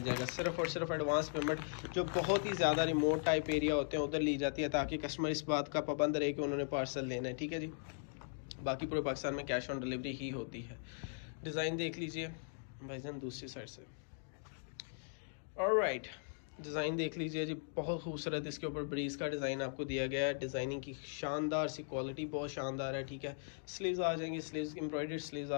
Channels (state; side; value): silent; right; digital silence